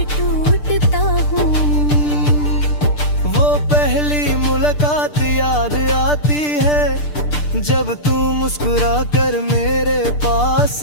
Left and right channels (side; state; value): right; late; 6.7 ms